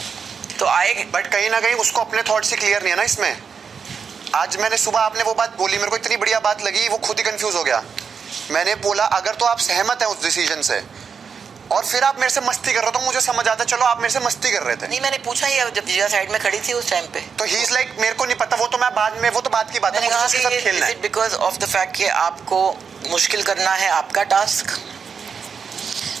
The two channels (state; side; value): quieter; left; 6.2 dB